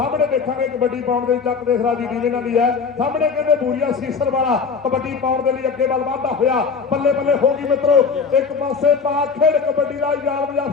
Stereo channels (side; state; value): right; quieter; 5.4 dB